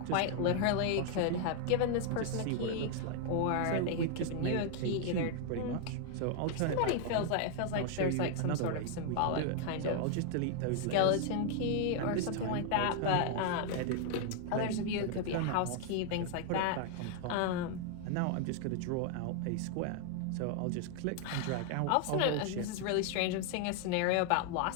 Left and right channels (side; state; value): both; different; correlation 0.00